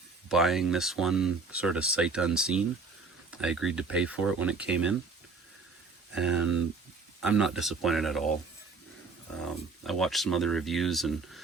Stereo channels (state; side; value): quieter; left; 4.3 dB